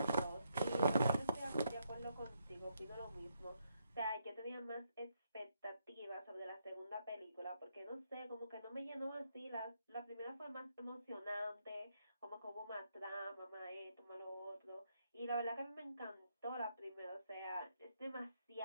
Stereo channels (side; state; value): both; inverted; correlation -0.78